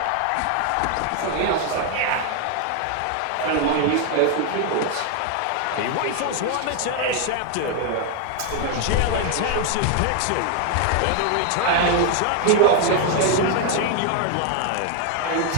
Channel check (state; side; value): different; both; correlation 0.00